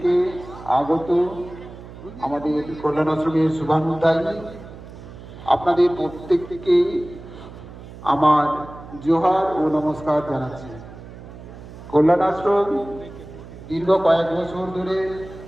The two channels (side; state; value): right; noise; hum, 16 dB below the sound